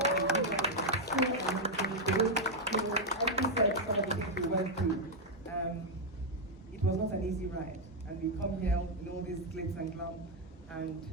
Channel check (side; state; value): both; normal; correlation 0.00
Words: It was not an easy ride, and we come here with all these glitz and glam, and